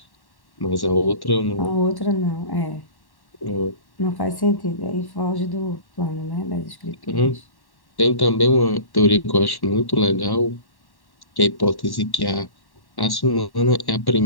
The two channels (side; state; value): right; late; 1.1 ms